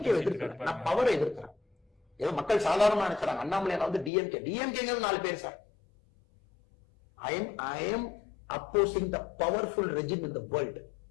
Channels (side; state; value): right; drops out; at 4.1 s